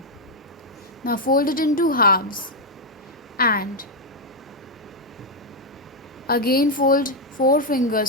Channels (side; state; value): both; normal; correlation 0.00